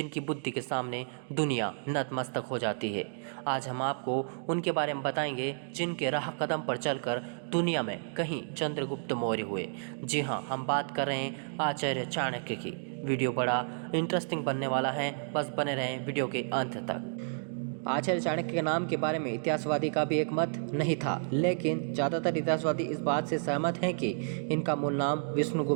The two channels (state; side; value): silent; left; digital silence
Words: बुद्धि के सामने दुनिया नतमस्तक हो जाती है। आज हम आपको उनके बारे में बताएंगे जिनके राह कदम पर चलकर दुनिया में कहीं चंद्रगुप्त मौर्य हुए। जी हाँ, हम बात कर रहे हैं आचार्य चाणक्य की। वीडियो बड़ा इंटरेस्टिंग बनने वाला है, बस बने रहें वीडियो के अंत तक। आचार्य चाणक्य के नाम के बारे में इतिहासवादी का भी एक मत नहीं था, लेकिन ज़्यादातर इतिहासवादी इस बात से सहमत हैं कि इनका मूल नाम